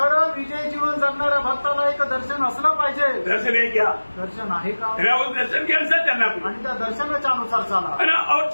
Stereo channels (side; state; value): both; inverted; correlation -1.00